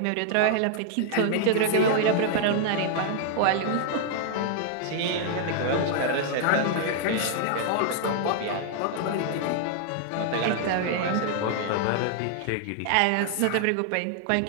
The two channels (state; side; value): different; both; correlation 0.00